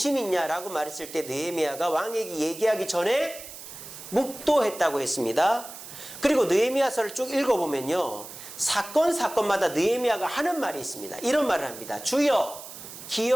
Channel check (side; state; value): right; noise; hiss, 13 dB below the sound